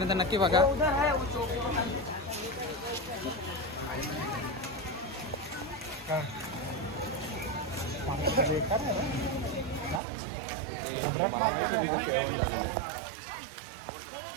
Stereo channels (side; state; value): left; drops out; at 10.0 s